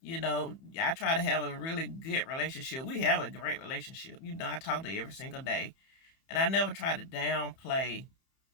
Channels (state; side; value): late; right; 30 ms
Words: I try to have a really good relationship. We have a great relationship. I talk to her every single day. And I never try to downplay